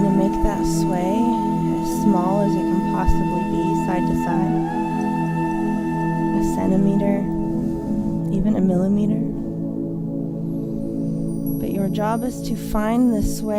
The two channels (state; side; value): identical; both; correlation 1.00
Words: make that sway as small as it can possibly be, side to side. A centimeter, even a millimeter. But your job is to find the